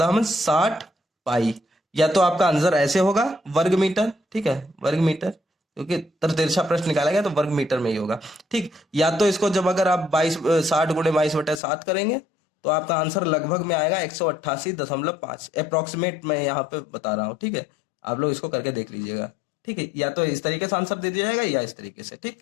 पाई। या तो आपका आंसर ऐसे होगा, वर्ग मीटर। ठीक है, वर्ग मीटर, क्योंकि तिरछा प्रश्न निकाला गया तो वर्ग मीटर में ही होगा। ठीक, या तो इसको जब अगर आप 60 × 22/7 करेंगे तो आपका आंसर लगभग में आएगा 188.5 अप्रोक्सीमेट, मैं यहाँ पे बता रहा हूँ। ठीक है, आप लोग इसको करके देख लीजिएगा। ठीक है, या तो इस तरीके से आंसर दे दिया जाएगा या इस तरीके से। ठीक,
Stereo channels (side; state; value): right; drops out; at 11.6 s